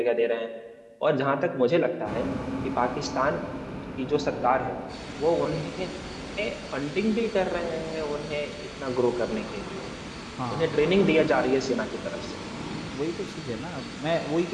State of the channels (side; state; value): both; identical; correlation 1.00